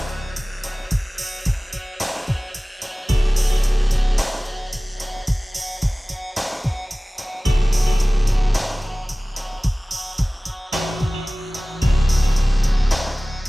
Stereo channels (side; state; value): both; normal; correlation 0.98